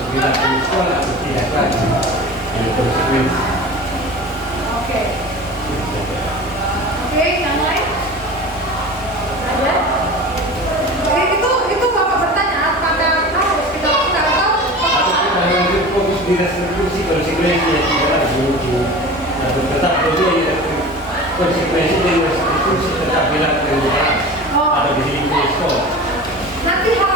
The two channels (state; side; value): normal; both; correlation 0.35